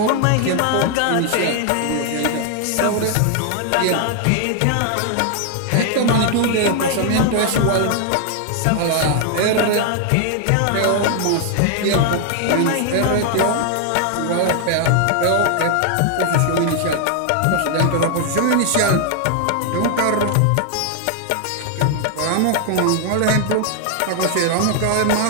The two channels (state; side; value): different; both; correlation 0.00